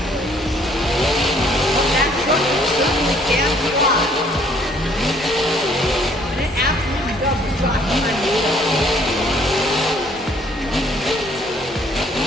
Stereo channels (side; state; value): both; normal; correlation 0.61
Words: But that truck certainly can fly. And it absolutely does drop behind the wheel.